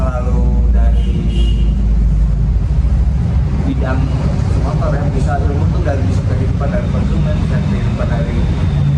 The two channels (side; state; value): both; identical; correlation 1.00